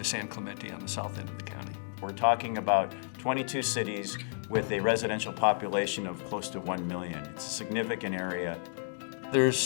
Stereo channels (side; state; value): right; silent; digital silence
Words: San Clemente on the south end of the county. We're talking about 22 cities with a residential population of close to 1 million. It's a significant area.